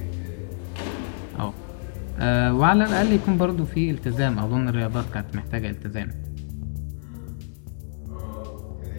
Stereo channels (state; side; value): silent; right; digital silence